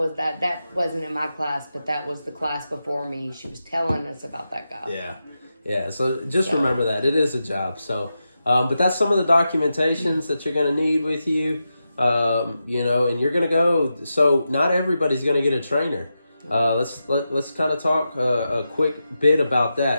that wasn't in my class, but that was the class before me. She was telling us about that guy. Yeah. So just remember that it is a job. So, but that's some of the documentations that you're going to need with you. And you're going to go. So not everybody's going to get a trainer. Let's kind of talk a quick bit about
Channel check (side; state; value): both; inverted; correlation -0.89